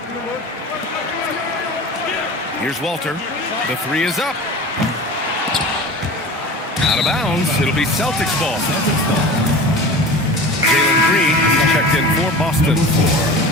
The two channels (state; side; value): normal; both; correlation 0.36